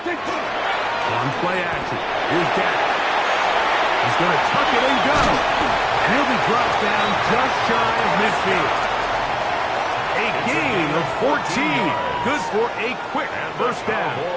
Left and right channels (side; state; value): both; identical; correlation 1.00